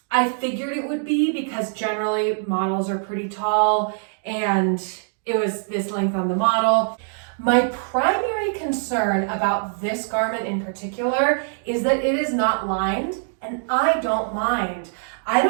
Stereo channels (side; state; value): left; silent; digital silence